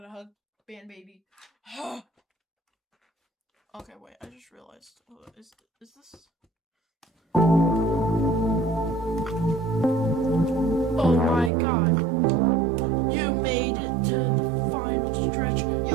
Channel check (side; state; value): left; drops out; at 11.5 s